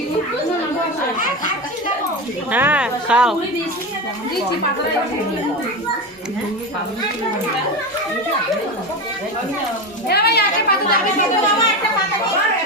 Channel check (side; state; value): both; normal; correlation 0.20